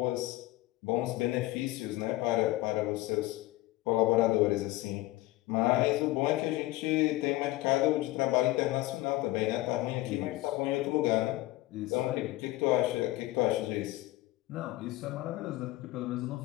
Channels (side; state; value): right; quieter; 18.2 dB